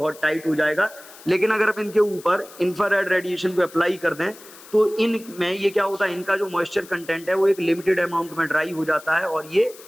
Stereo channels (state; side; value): noise; left; hiss, 20 dB below the sound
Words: टाइट हो जाएगा। लेकिन अगर आप इनके ऊपर इंफ्रारेड रेडिएशन को अप्लाई कर दें तो इनमें ये क्या होता है, इनका जो मॉइस्चर कंटेंट है वो एक लिमिटेड अमाउंट में ड्राई हो जाता है और ये